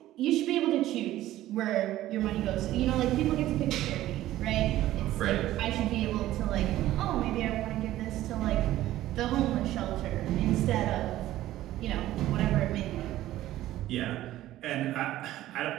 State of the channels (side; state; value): left; quieter; 14.6 dB